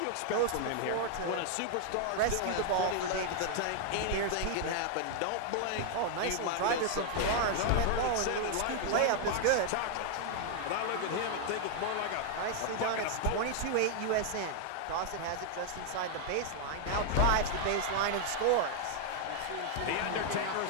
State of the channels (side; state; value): both; different; correlation 0.00